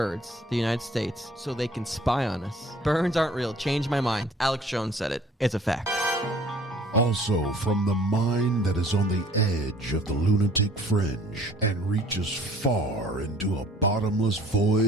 to the United States so they can spy on us. Birds aren't real. Change my mind. Alex Jones said it. It's a fact. Also from the mind that is on the edge of the lunatic fringe and reaches far into a bottomless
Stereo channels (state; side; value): normal; both; correlation 0.54